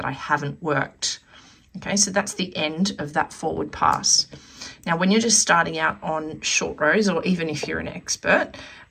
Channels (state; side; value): identical; both; correlation 1.00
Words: I haven't worked. Okay, so that's the end of that forward pass. Now, when you're just starting out on short rows, or even if you're an expert,